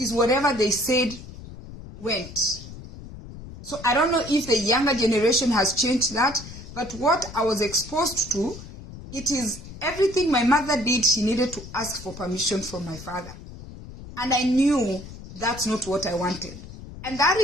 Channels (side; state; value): left; noise; rumble, 14 dB below the sound